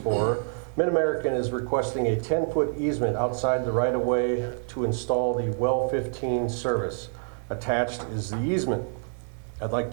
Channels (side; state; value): left; silent; digital silence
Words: MidAmerican is requesting a 10-foot easement outside the right-of-way to install the well 15 service. Attached is the easement. I'd like